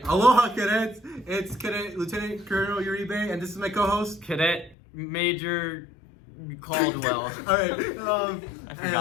Aloha, cadets! It's Cadet Lieutenant Colonel Uribe, and this is my co-host, Cadet Major Caldwell. All right. I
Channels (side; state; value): right; drops out; at 4.8 s